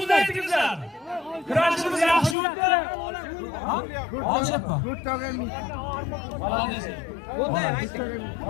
aytingizlar. Kurashimiz yaxshi o'tdi. Olishyapti.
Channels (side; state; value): right; drops out; at 2.4 s